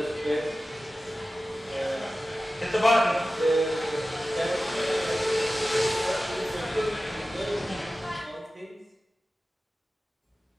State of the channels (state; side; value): normal; both; correlation 0.95